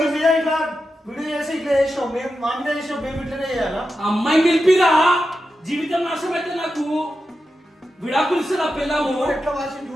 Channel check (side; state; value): both; normal; correlation 0.90